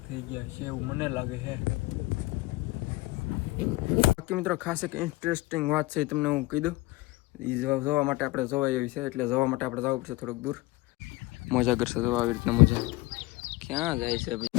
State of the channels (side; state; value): right; quieter; 20.1 dB